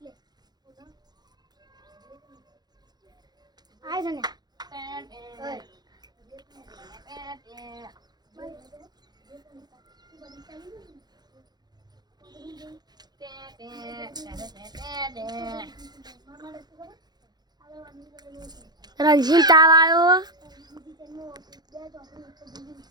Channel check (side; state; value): left; late; 0.20 ms